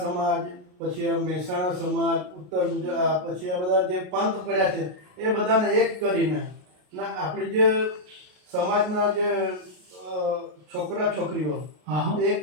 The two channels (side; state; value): left; late; 33 ms